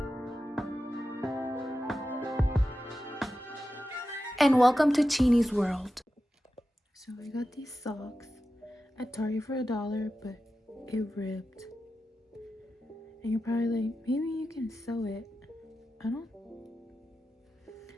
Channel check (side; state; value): both; normal; correlation 0.92